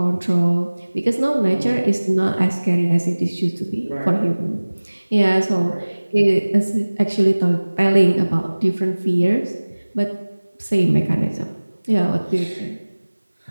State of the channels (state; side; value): inverted; both; correlation -1.00